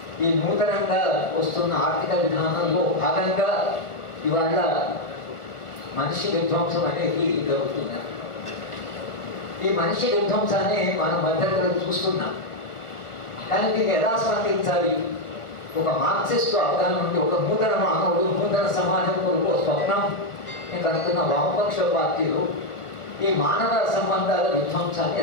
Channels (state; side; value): late; right; 1.3 ms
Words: ఈ నూతనంగా వస్తున్న ఆర్థిక విధానంలో భాగంగా ఇవాళ మనిషి విధ్వంసం అనేది జరుగుతుంది. ఈ మనిషి విధ్వంసాన్ని మనం మధ్యలో చూస్తున్నాం, కానీ దీన్ని ఎలా స్పందించాలి? ఒక మార్క్సిస్ట్ అవగాహన నుండి ఒక నూతన మానవుడు నూతన సమాజం కొరకు స్వప్నం నేను అనుకున్న వామపక్ష పార్టీలు ఈ మానవ సంబంధాల విధ్వంసాన్ని